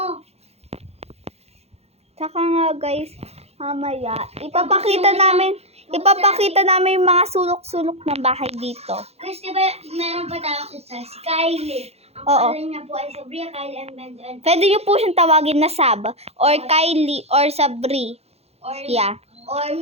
Tsaka nga guys, mamaya, ipapakita namin yung mga sulok-sulok ng bahay dito. Kasi diba, meron pa tayong isa, si Kylie. Ang Oo. pangalan niya po ay Sabria Kylie and Benjamin. Pwede nyo po siyang tawagin na Sab, or Kylie, or Sabri. Or, Yeah. or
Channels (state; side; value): late; left; 0.30 ms